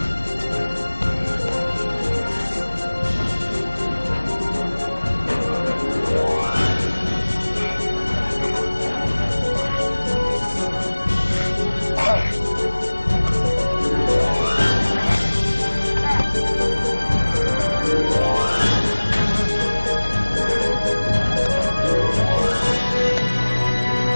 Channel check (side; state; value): both; inverted; correlation -1.00